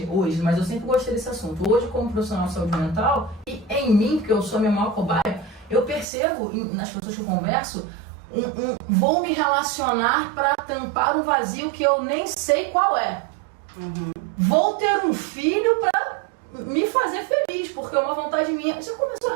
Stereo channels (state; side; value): drops out; left; at 6.1 s